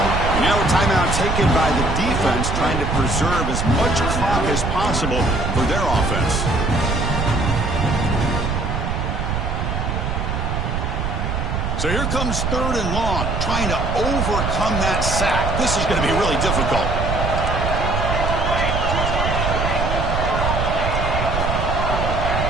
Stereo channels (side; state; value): right; noise; rumble, 1 dB below the sound